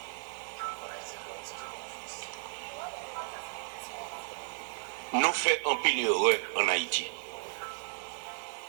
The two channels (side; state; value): left; silent; 55 dB below the other